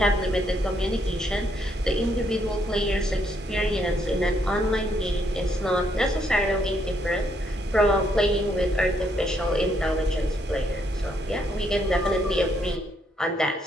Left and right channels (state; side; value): normal; both; correlation 0.73